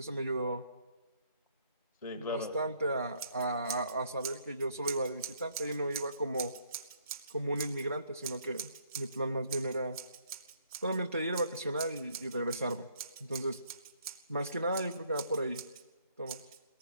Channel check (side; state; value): both; inverted; correlation -0.67